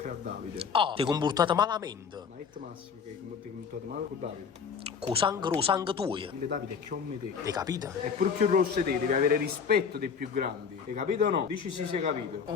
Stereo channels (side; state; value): right; quieter; 6.3 dB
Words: a Davide. Ah, ti hai comportato malamente. Ma è Massimo che ti hai comportato male con Davide. Con sangue tuo. Il Davide è come te. Hai capito? È pure più rosso di te, devi avere rispetto dei più grandi. Hai capito o no? Dici sì, sei capito.